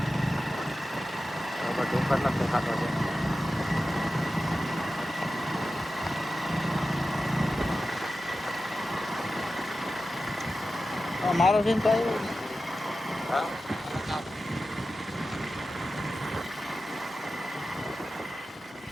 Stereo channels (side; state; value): both; normal; correlation 0.93